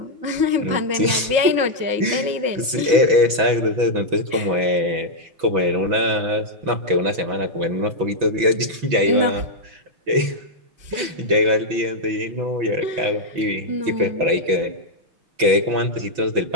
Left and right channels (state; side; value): late; left; 6.0 ms